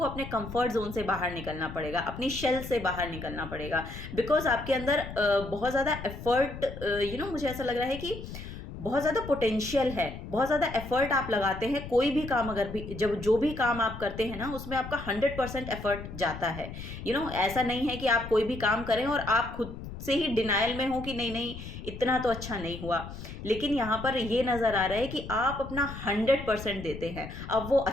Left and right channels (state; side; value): noise; left; rumble, 10 dB below the sound